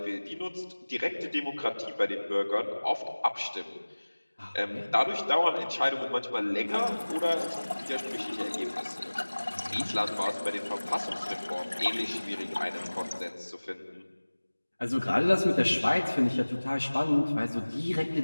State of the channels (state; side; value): inverted; both; correlation -1.00